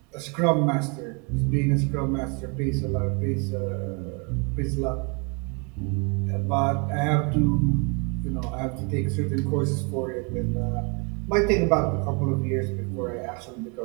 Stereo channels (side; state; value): left; quieter; 33.8 dB